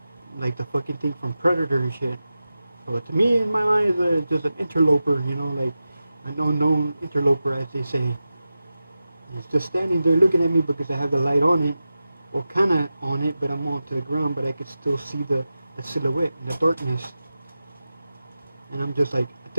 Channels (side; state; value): both; inverted; correlation -0.93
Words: the fucking thing from Predator and shit. So to me, in my mind, it's just an interloper, you know, like an unknown interloper, as they say. It's just standing there looking at me because I have the light on it, or kind of on it, but I'm on to the ground, but I could still see the silhouette in the darkness. And I'm just like,